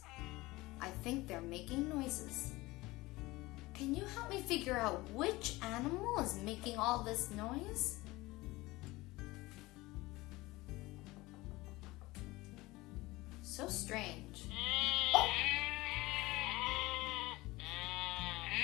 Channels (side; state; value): right; quieter; 20.4 dB